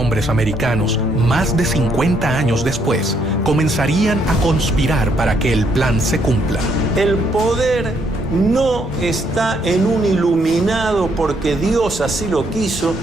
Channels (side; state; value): both; normal; correlation 0.72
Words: americanos, más de 50 años después, comenzarían a conspirar para que el plan se cumpla. El poder no está en un iluminado porque Dios así lo quiso,